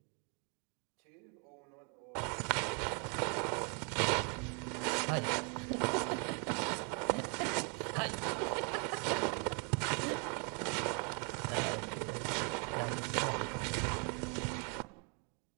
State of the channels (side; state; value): left; quieter; 37.1 dB